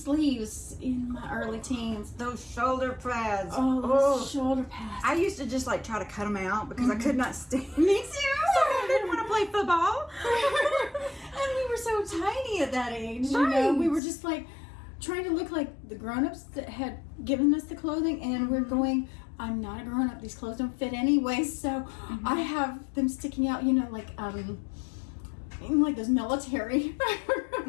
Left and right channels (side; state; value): right; drops out; at 14.0 s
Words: in my early teens. Those shoulder pads. Oh, those shoulder pads. I used to just like try to cut them out because I could not stand. Me too. I didn't want to play football. And we were so tiny at that age. You know, we were just like trying to look like the grown-ups that had given us the clothing, and we're going, I'm not a grown-up, these clothes don't fit anyway, so I have them sticking out, you know, like those military